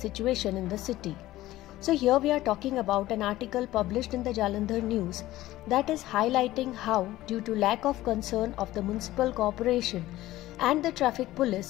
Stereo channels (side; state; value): right; quieter; 16.0 dB